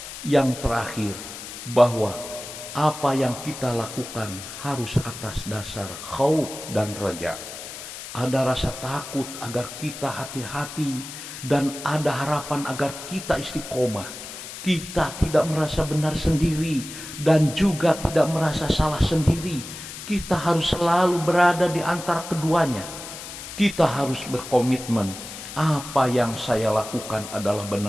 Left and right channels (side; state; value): left; noise; hiss, 11 dB below the sound